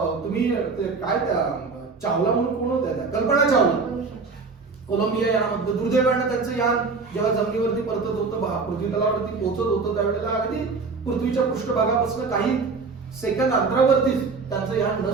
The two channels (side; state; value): left; quieter; 4.4 dB